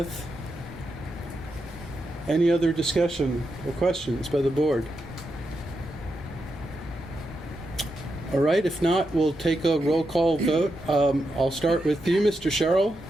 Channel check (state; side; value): normal; both; correlation 0.85